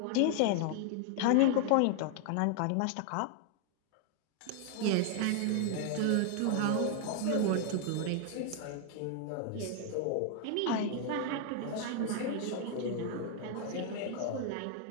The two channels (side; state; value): both; different; correlation 0.00